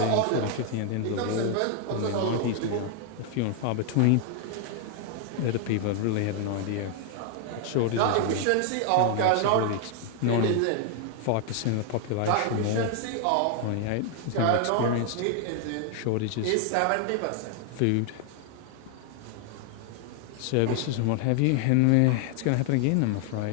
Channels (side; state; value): both; different; correlation 0.00